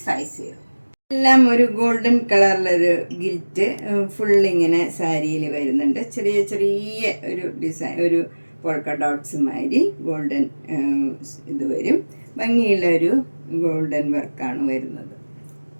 എല്ലാം ഒരു ഗോൾഡൻ കളറിലൊരു ഗിൽറ്റ് ഫുള്ളിങ്ങനെ സാരിയിൽ വരുന്നുണ്ട്. ചെറിയ ചെറിയ ഒരു ഡിസൈൻ, ഒരു പോൾക്ക ഡോട്ട്സ് മാതിരി ഗോൾഡൻ ഇത് വരും. ഭംഗിയുള്ള ഒരു ഗോൾഡൻ വർക്കാണ് വരുന്നത്.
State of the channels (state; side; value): inverted; both; correlation -1.00